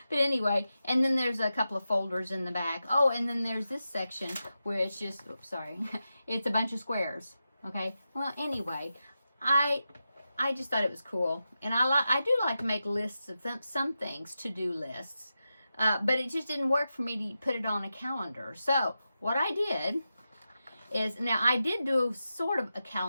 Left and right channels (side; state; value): both; inverted; correlation -0.90